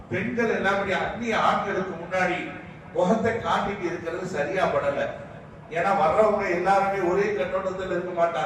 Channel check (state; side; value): identical; both; correlation 1.00